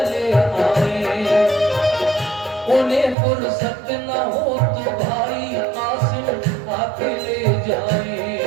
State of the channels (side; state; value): left; drops out; at 3.2 s